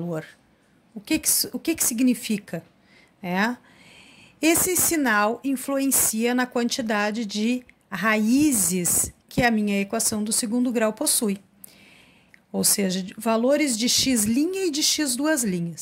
O que significa? Esse sinal influencia na quantidade de raízes que a minha equação do segundo grau possui. Ou seja, valores de x' e de x duas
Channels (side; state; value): both; identical; correlation 1.00